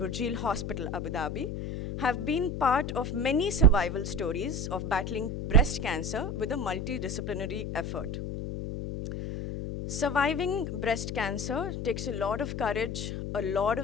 Abu Dhabi have been part of many survival stories of battling breast cancer with a multidisciplinary effort. Surviving breast cancer takes a lot of courage, a lot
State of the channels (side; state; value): left; noise; hum, 4 dB below the sound